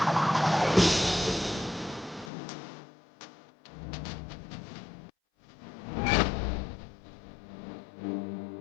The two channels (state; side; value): drops out; right; at 2.3 s